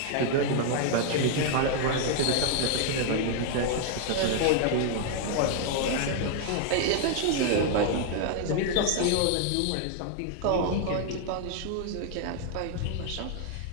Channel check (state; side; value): different; both; correlation 0.00